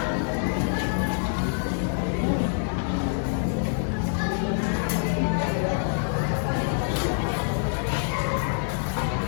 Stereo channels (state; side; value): silent; right; digital silence